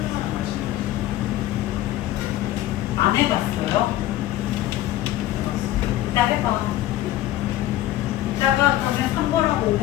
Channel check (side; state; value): right; quieter; 14.3 dB